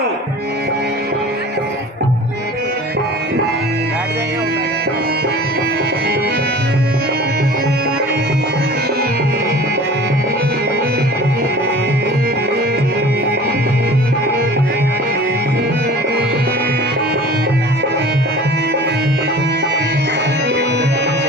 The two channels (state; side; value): normal; both; correlation 0.42